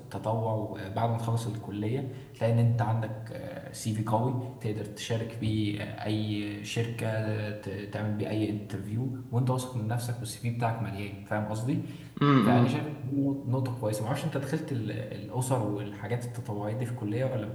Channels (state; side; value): identical; both; correlation 1.00